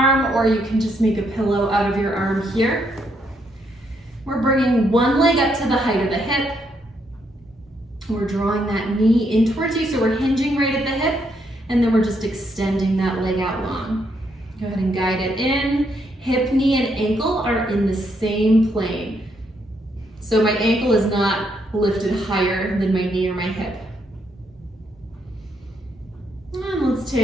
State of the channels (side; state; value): both; normal; correlation 0.75